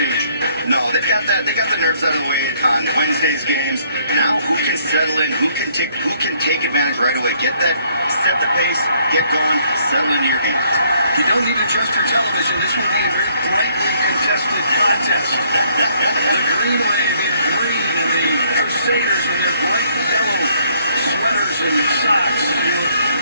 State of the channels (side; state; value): both; inverted; correlation -0.66